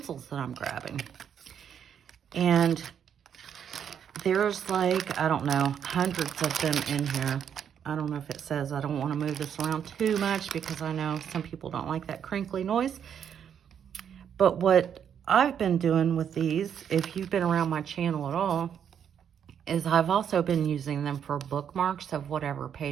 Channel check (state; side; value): quieter; left; 8.4 dB